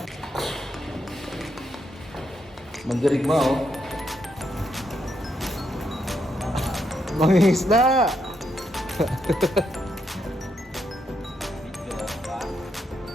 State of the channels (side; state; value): both; normal; correlation 0.79